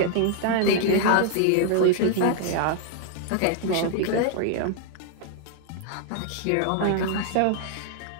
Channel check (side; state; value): both; different; correlation 0.00